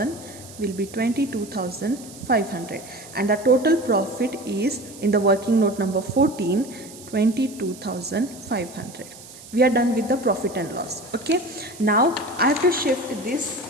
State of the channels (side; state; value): right; noise; hiss, 18 dB below the sound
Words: will be 22,500, and the total profit is in the working note number 14, 22,500. We are done with the profit and loss. Okay, now I have to shift